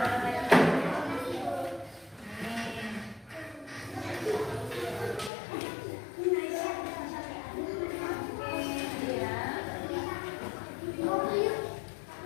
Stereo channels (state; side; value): drops out; right; at 5.3 s